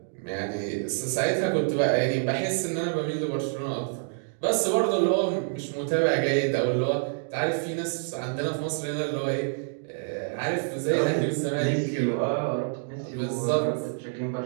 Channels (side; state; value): left; silent; digital silence